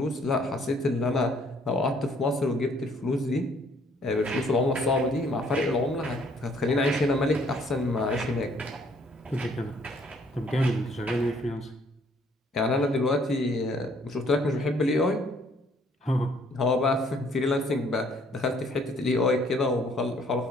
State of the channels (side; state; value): both; normal; correlation 0.63